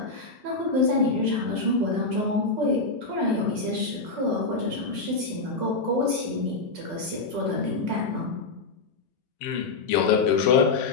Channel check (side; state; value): right; quieter; 3.9 dB